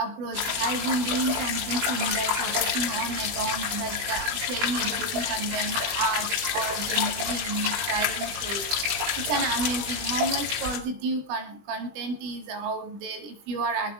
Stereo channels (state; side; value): late; left; 20 ms